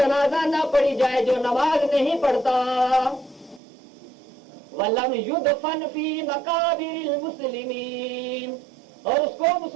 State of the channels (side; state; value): left; drops out; at 3.6 s